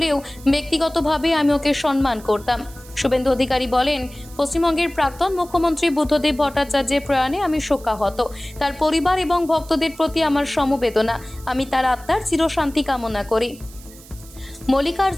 ব্যক্তিগতভাবে আমি ওকে সম্মান করতাম। শুভেন্দু অধিকারী বলেন, পশ্চিমবঙ্গের প্রাক্তন মুখ্যমন্ত্রী বুদ্ধদেব ভট্টাচার্যের প্রয়াণে আমি শোকাহত। তার পরিবার এবং ভক্তদের প্রতি আমার সমবেদনা। আমি তার আত্মার চিরশান্তি কামনা করি।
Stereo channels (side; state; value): right; noise; hiss, 21 dB below the sound